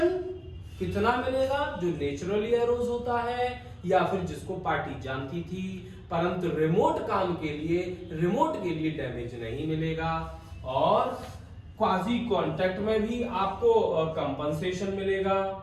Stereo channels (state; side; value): identical; both; correlation 1.00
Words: कितना मिलेगा, जो नेचुरली एरोज होता है या फिर जिसको पार्टी जानती थी, परंतु रिमोट काम के लिए डैमेज नहीं मिलेगा। और क्वाजी कॉन्ट्रैक्ट में भी आपको कंपनसेशन मिलेगा,